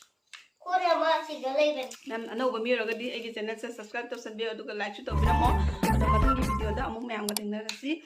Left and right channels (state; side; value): identical; both; correlation 1.00